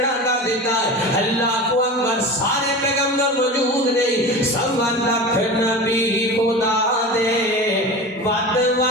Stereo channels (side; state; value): both; normal; correlation 0.31